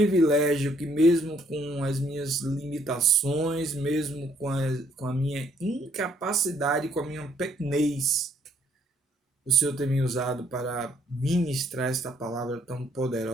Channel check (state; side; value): normal; both; correlation 0.67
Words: que, mesmo com as minhas limitações, mesmo com a minha incapacidade, com a minha pequenez, o Senhor tem me usado para ministrar esta palavra tão